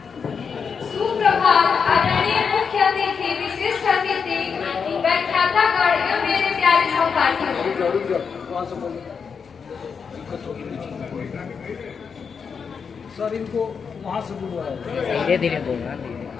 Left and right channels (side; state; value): right; quieter; 6.1 dB